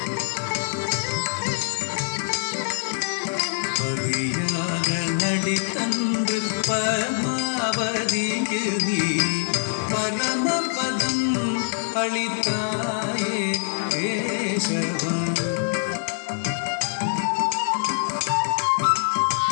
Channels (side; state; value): right; silent; digital silence